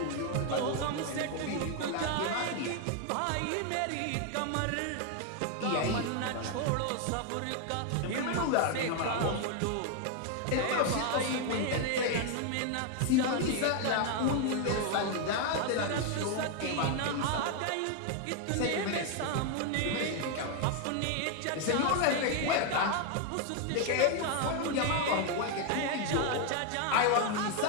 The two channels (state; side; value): different; both; correlation 0.01